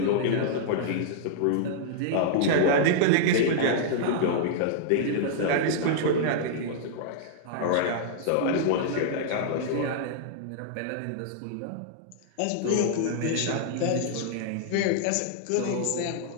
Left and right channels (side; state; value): both; different; correlation -0.01